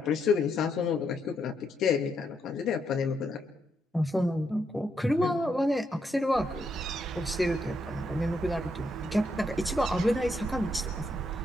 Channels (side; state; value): both; normal; correlation 0.78